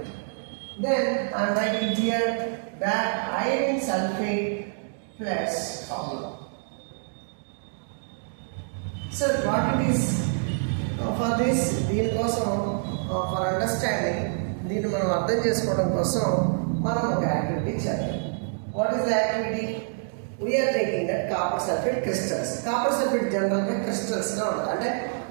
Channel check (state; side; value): silent; left; digital silence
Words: Then I am writing here that iron sulfate plus copper. So what it is for this? దీని కోసం for understanding, దీన్ని మనం అర్థం చేసుకోవడం కోసం మనం ఒక activity చేయాలి. What is the activity? We are taking that copper sulphate crystals. Copper sulphate జనరల్గా క్రిస్టల్స్గా ఉంటుంది, అంటే